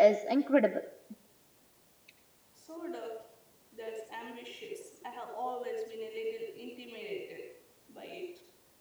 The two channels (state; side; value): identical; both; correlation 1.00